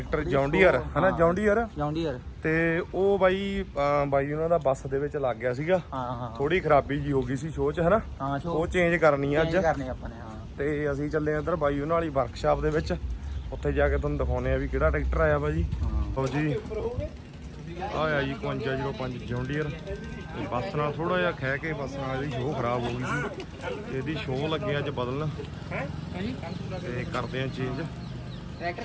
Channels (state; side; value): identical; both; correlation 1.00